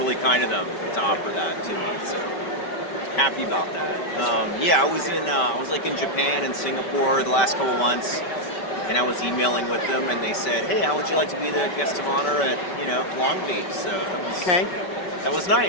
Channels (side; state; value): right; late; 5.2 ms